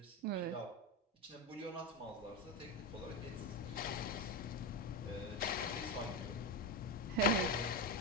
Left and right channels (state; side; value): normal; both; correlation 0.14